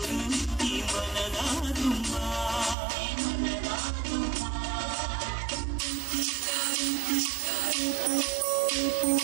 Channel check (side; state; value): left; drops out; at 2.8 s